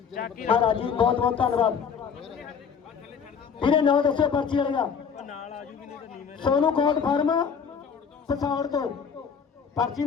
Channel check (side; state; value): right; quieter; 6.6 dB